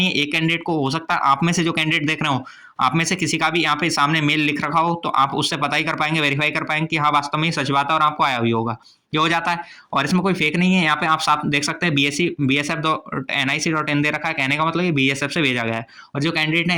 है एक कैंडिडेट को, हो सकता है आप में से जो कैंडिडेट देख रहे हो आप में से किसी का भी यहाँ पे सामने मेल लिख रखा हो तो आप उससे पता ही कर पाएंगे, वेरीफाई कर पाएंगे कि हाँ वास्तव में सच बात है और आपको आया भी होगा। ये हो जाता है। और इसमें कोई फेक नहीं है, यहाँ पे आप साफ देख सकते हैं BSF.nic.in दे रखा है, कहने का मतलब ये BSF से भेजा गया है। और जो कैंडिडेट है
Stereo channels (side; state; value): both; identical; correlation 1.00